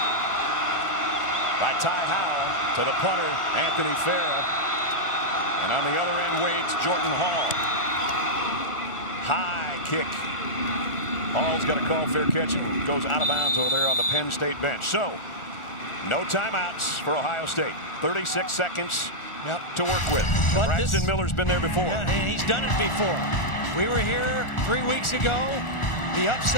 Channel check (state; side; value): late; right; 1.4 ms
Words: by Ty Howell to the punter, Anthony Farah. And on the other end waits Jordan Hall. High kick. Hall's got a call, fair catch, and goes out of bounds over there on the Penn State bench. So, no timeouts for Ohio State. 36 seconds to work with. Braxton Miller's been there before. Yeah, and he's done it before. We were here 3 weeks ago. The